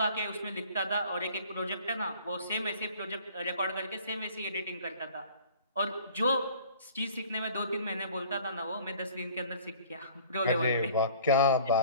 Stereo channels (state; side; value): inverted; both; correlation -0.51